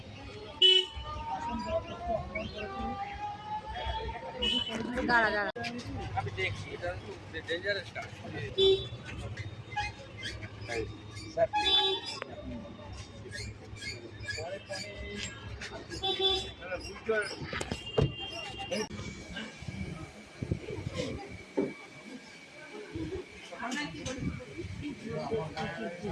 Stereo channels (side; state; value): both; identical; correlation 1.00